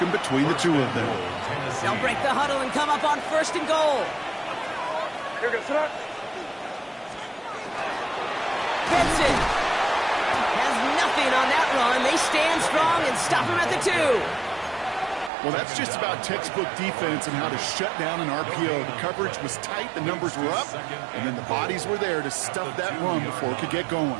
between the two of them. They'll break the huddle and come up on 1st and goal. Here goes that. Benson has nothing on that run. They stand strong and stop him at the 2. Well, that's just about textbook defense and how to shut down an RPO. The coverage was tight, the numbers were up, and then the bodies were there to stuff that run before it could get going.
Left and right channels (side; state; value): left; drops out; at 15.3 s